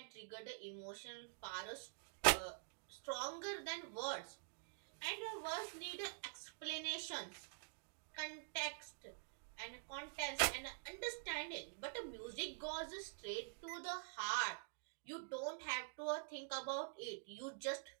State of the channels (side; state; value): left; silent; digital silence